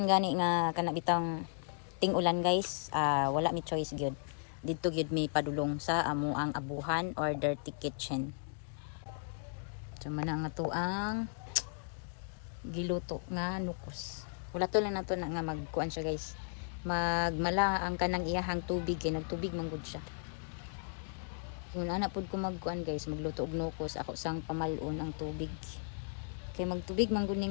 gani nga kana bitang ting-ulan guys, wala mi choice gyud. Dito gyud mi padulong sa amo ang abuhan or dirty kitchen. So man ang ato ang giluto nga nukos. Wala to lang nato na nga magkuan siya guys. Magmala ang kanang iyahang tubig kay nagtubig man gud siya. Kung ana pud ko magkuan guys, magluto og nukos, ako sang pamalon ang tubig. Kay magtubig man gud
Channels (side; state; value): right; silent; digital silence